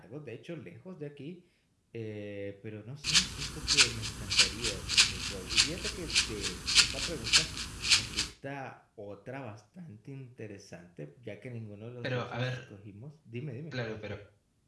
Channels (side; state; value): both; identical; correlation 1.00